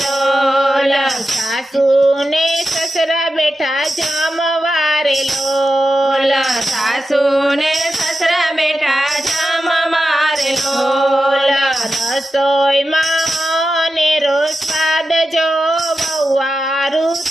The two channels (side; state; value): both; normal; correlation 0.91